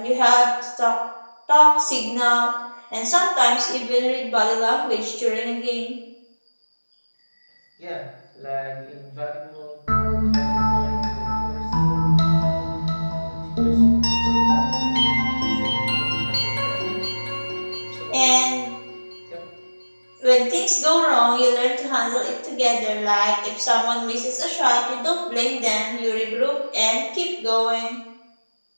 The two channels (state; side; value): inverted; both; correlation -1.00